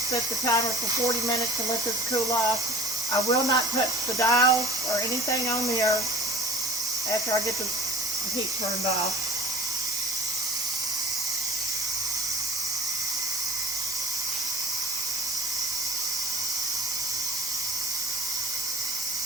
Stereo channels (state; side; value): normal; both; correlation 0.45